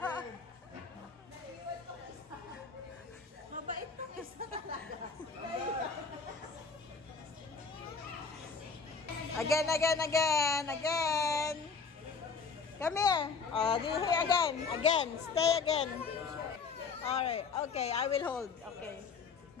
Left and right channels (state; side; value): quieter; right; 5.1 dB